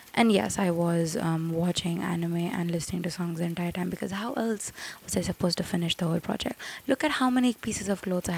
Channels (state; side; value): identical; both; correlation 1.00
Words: And yes, I was watching anime and listening to songs the entire time because how else was I supposed to finish the whole project? Look at how many pieces of clothes I